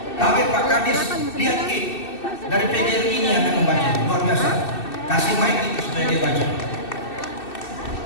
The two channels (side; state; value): right; late; 2.6 ms